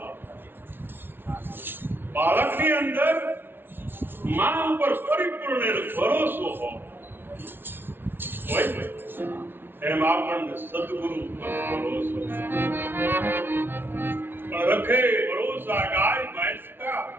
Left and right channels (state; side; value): late; left; 0.10 ms